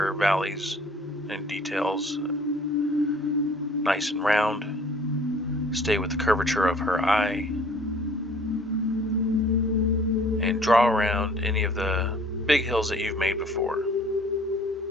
valleys and details nice and round. Stay with the curvature of her eye, and draw around any of the big hills that you've made before.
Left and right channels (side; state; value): both; normal; correlation 0.53